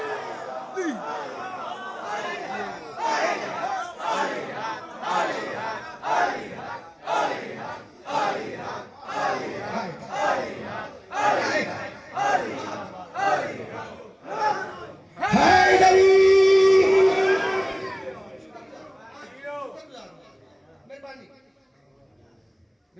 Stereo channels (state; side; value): identical; both; correlation 1.00